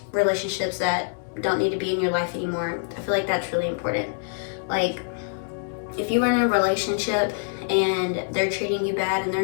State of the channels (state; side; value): silent; right; 62 dB below the other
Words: relationships that don't need to be in your life anymore. I feel like that's really important. Like, if you were in a relationship and they're treating you bad and they're